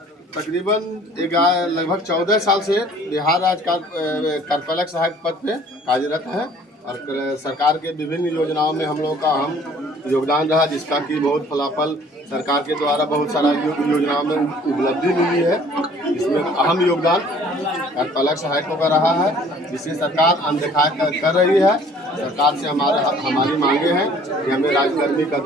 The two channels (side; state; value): both; normal; correlation 0.54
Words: तकरीबन लगभग 14 साल से बिहार राज्य कार्यपालक सहायक पद पे कार्यरत है और सरकार के विभिन्न योजनाओं में हम लोगों का अहम योगदान रहा, जिसका कि बहुत फलाफल सरकार के द्वारा बहुत सारा योजनाओं में उपलब्धि मिली है। इसमें अहम योगदान कार्यपालक सहायकों का रहा है, जिसे सरकार अनदेखा कर रही है। सरकार से हमारी मांगे हैं कि हमें राज्यकर्मी का